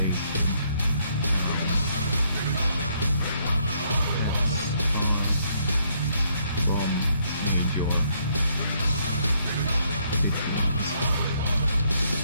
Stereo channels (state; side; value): inverted; both; correlation -0.70